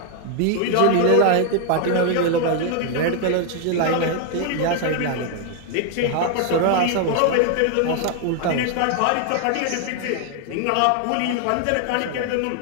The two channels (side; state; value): both; different; correlation 0.00